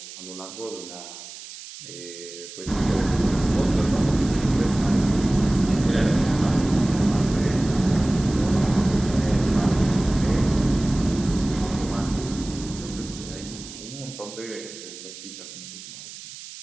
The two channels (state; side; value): noise; right; hiss, 14 dB below the sound